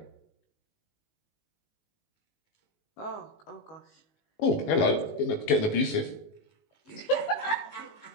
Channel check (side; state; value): right; late; 19 ms